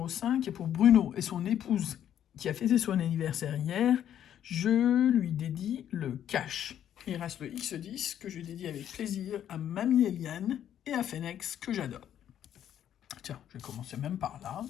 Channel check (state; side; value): quieter; right; 10.3 dB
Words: 5, et pour Bruno et son épouse qui a fêté son anniversaire hier, je lui dédie le cash. Il reste le X10 que je dédie avec plaisir à Mamie Eliane et à Phoenix que j'adore. Tiens, je vais commencer même par là.